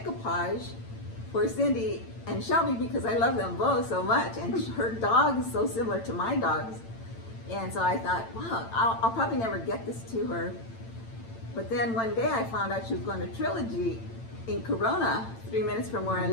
for Cindy and Shelby because I love them both so much, and her dog is so similar to my dogs. And so I thought, wow, I'll probably never get this to her. But then one day I found out she was going to Trilogy in Corona, 3 minutes from where I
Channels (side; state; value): right; late; 8.9 ms